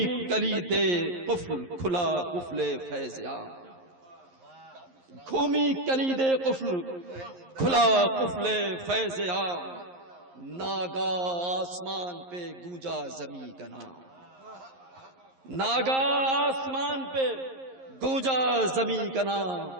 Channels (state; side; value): late; left; 11 ms